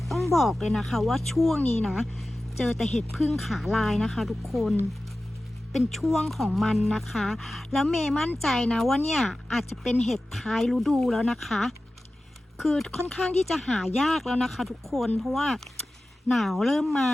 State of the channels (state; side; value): normal; both; correlation 0.95